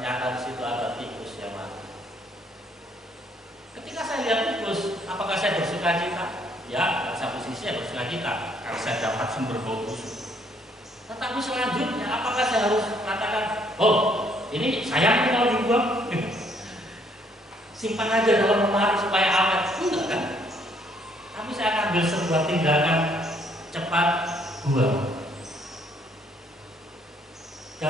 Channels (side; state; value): both; normal; correlation 0.67